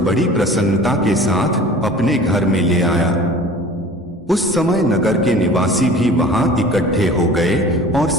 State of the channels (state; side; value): normal; both; correlation 0.43